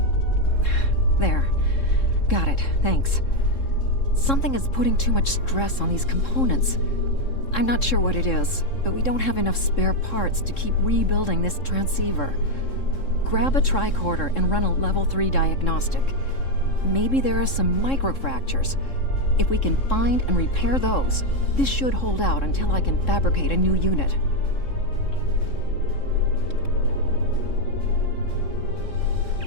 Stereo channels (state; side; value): late; right; 3.7 ms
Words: There. Got it, thanks. Something is putting too much stress on these components. I'm not sure what it is, but we don't have enough spare parts to keep rebuilding this transceiver. Grab a tricorder and run a level 3 diagnostic. Maybe there are some microfractures. If we can find and repair those, this should hold out until I can fabricate a new unit.